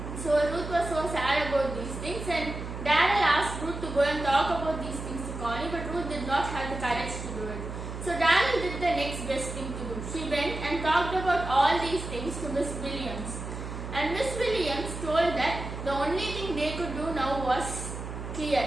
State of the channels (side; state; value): right; noise; hum, 8 dB below the sound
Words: So Ruth was so sad about these things, and Darrell asked Ruth to go and talk about these things to Connie, but Ruth did not have the courage to do it. So Darrell did the next best thing to do. She went and talked about all these things to Miss Williams. And Miss Williams told that the only thing they could do now was clear.